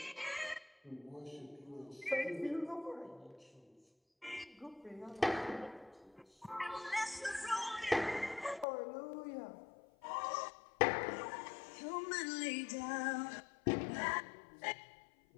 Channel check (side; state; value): right; drops out; at 8.7 s